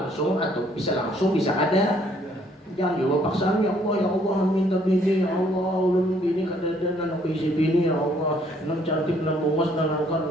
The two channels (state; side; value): normal; both; correlation 0.65